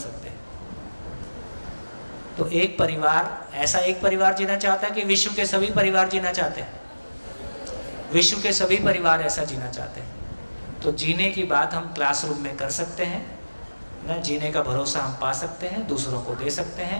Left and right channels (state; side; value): inverted; both; correlation -1.00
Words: हैं। तो एक परिवार, ऐसा एक परिवार जीना चाहता है कि विश्व के सभी परिवार जीना चाहते हैं, विश्व के सभी परिवार ऐसा जीना चाहते हैं। तो जीने की बात हम क्लासरूम में कर सकते हैं ना, जीने का भरोसा हम पा सकते हैं, दूसरों को दे सकते